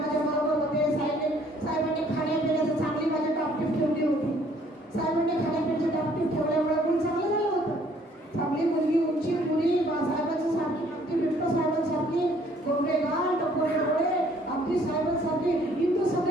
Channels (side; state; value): both; normal; correlation 0.61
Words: खाण्यापिण्याचं चांगली माझी टापटीप ठेवली होती. साहेबांनी खाण्यापिण्याची टापटीप ठेवल्यामुळे मुलं चांगलं झालं होतं. चांगली मुलगी, उंची मुली, साहेबांची सारखी अगदी बिट्टो साहेबांसारखी, गोंडे गाल, टपोरे डोळे, अगदी साहेबांसारखी इंदू